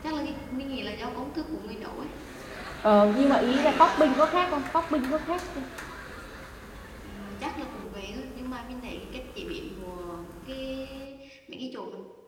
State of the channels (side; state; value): both; identical; correlation 1.00